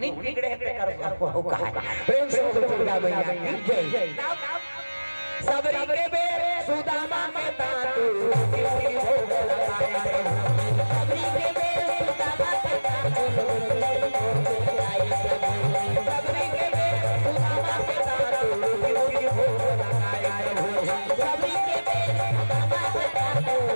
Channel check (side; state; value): both; inverted; correlation -1.00